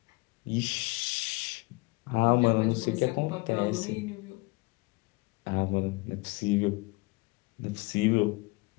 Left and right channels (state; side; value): quieter; right; 25.6 dB